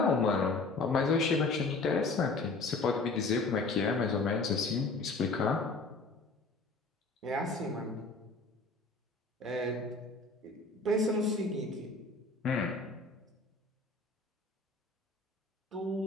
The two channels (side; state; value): right; quieter; 3.5 dB